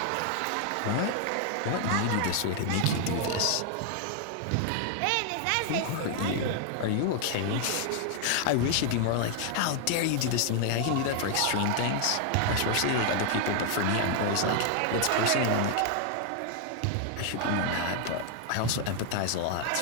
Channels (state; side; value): different; both; correlation 0.00